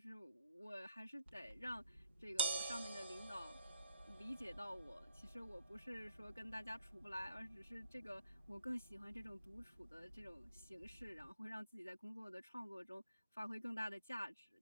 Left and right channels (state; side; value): inverted; both; correlation -0.74